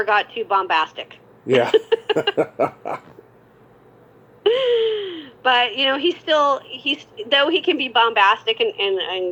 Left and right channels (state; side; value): identical; both; correlation 1.00